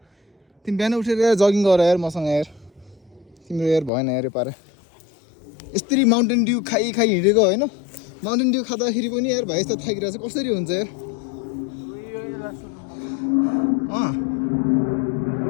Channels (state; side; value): drops out; right; at 3.9 s